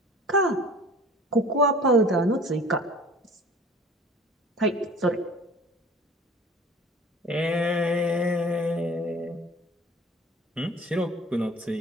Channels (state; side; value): normal; both; correlation 0.44